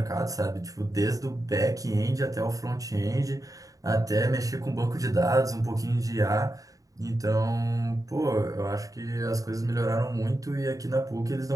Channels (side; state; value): left; late; 0.17 ms